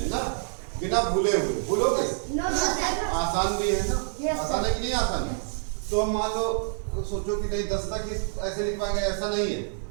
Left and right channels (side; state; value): left; silent; digital silence